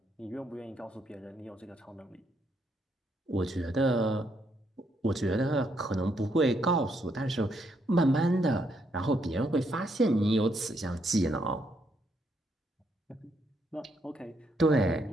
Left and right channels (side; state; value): both; normal; correlation 0.75